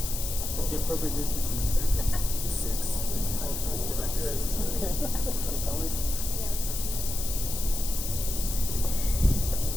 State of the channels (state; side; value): noise; left; hiss, 5 dB below the sound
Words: The appropriate distance. 6.